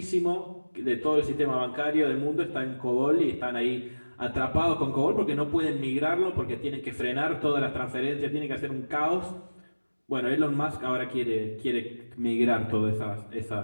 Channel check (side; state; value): both; inverted; correlation -1.00